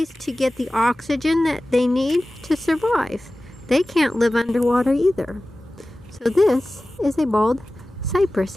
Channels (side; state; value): both; normal; correlation 0.96